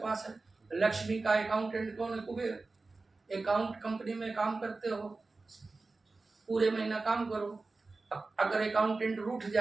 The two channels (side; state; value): left; quieter; 3.6 dB